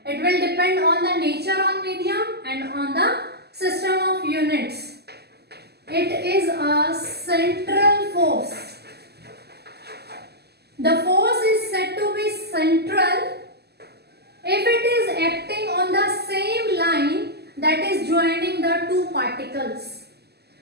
It will depend on the nature of medium and on the system of units. It is a central force. The force is said to be central if it is acting on the same line that is joining the two particles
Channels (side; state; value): left; late; 0.47 ms